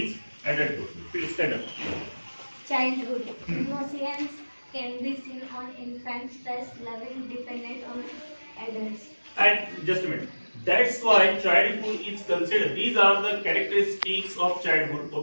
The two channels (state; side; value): inverted; both; correlation -1.00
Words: adulthood. Please stand up. Childhood. Innocence can be seen on infants, thus loving dependent on adults. And just a minute. That's why childhood is considered. These are the characteristics of childhood,